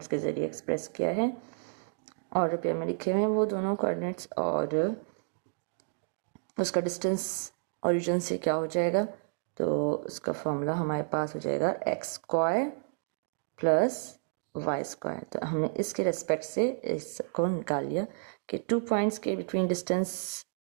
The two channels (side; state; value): left; silent; digital silence